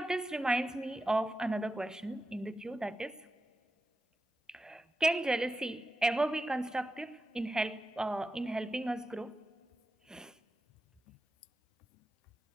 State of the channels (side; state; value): both; normal; correlation 0.91